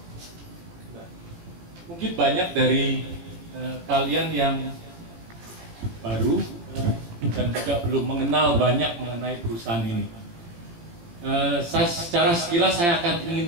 mungkin banyak dari kalian yang baru dan juga belum mengenal banyak mengenai perusahaan ini. Secara sekilas saya akan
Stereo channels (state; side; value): late; left; 17 ms